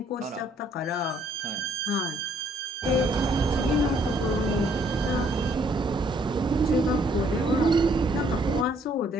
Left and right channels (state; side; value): normal; both; correlation 0.65